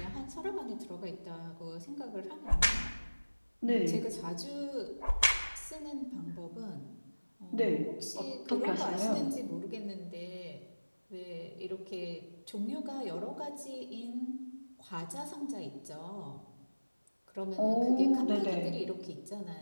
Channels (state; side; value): inverted; both; correlation -1.00